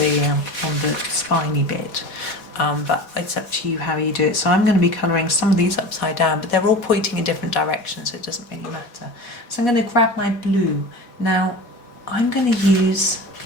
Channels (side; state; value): right; late; 4.1 ms